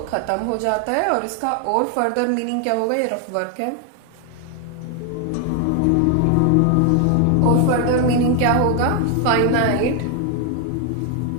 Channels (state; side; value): different; both; correlation 0.00